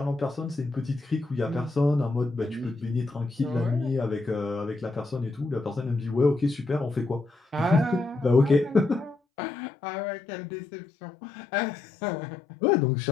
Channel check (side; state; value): right; drops out; at 9.2 s